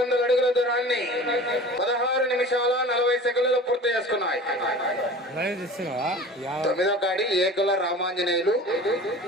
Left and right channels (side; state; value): both; normal; correlation 0.39